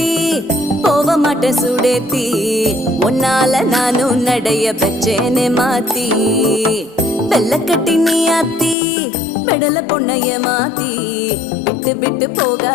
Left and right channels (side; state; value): right; drops out; at 8.8 s